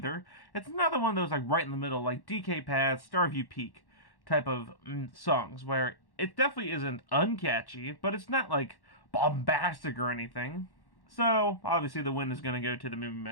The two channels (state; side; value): late; right; 1.1 ms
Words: It's another one of those, like, right in the middle, like DK Path, Starview Peak type of songs, where it definitely isn't uncatchy, but it's not, like, bombastic or anything. So, obviously the win is going to go to the Moo Moo